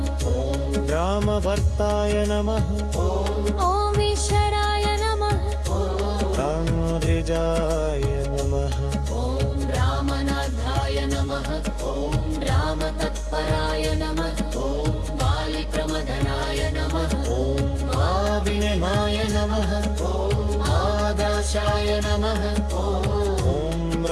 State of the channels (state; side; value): identical; both; correlation 1.00